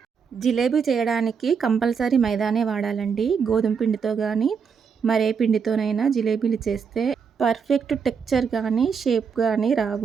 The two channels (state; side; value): quieter; left; 6.3 dB